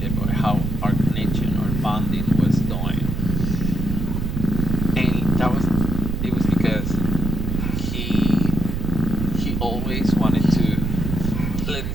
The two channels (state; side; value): noise; right; rumble, 2 dB below the sound